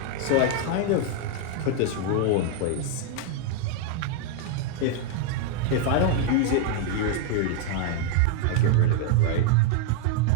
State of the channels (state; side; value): different; both; correlation 0.00